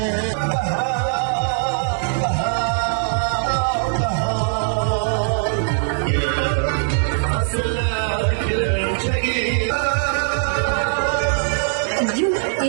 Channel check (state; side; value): silent; left; 59 dB below the other